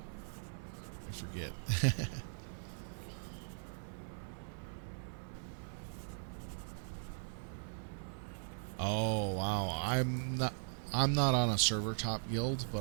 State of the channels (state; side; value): silent; left; 52 dB below the other